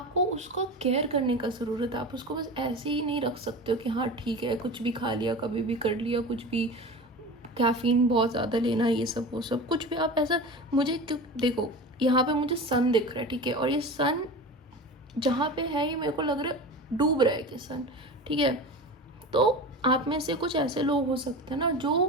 उसका केयर करने का ज़रूरत है। आप उसको बस ऐसे ही नहीं रख सकते हो कि हाँ ठीक है, कुछ भी खा लिया, कभी भी कर लिया, कुछ भी कैफ़ीन बहुत ज़्यादा लेना, ये सब वो सब कुछ भी आप ऐसा। मुझे देखो यहाँ पे मुझे सन दिख रहा है, ठीक है, और ये सन जहाँ पे है ये मेरे को लग रहा है डूब रहा है कि सन, ठीक है। तो आप में से कुछ ऐसे लोग हो सकते हैं ना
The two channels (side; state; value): both; normal; correlation 0.31